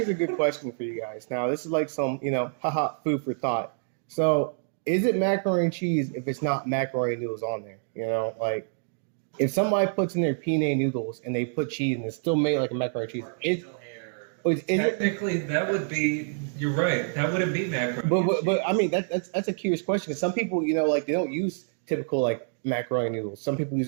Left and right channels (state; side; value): silent; left; digital silence